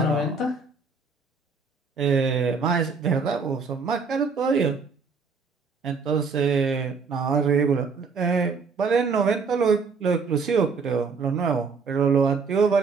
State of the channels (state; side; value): quieter; left; 4.9 dB